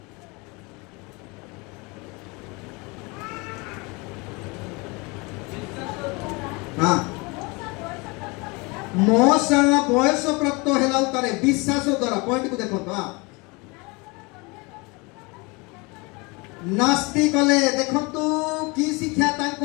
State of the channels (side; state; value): right; quieter; 27.2 dB